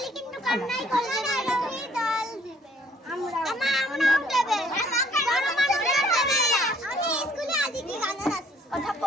কিন্তু কান্নাই করবে না রবি ডল দিবে আমরাও দেবে বড় মানুষ দেবে আমি স্কুলে আজ কি গানা নাচি কথা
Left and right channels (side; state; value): both; normal; correlation 0.61